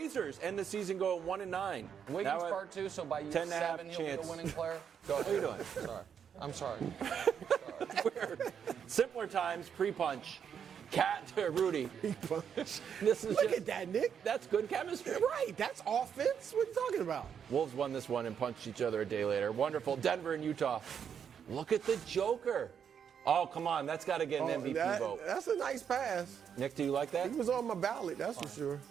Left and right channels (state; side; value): quieter; left; 7.8 dB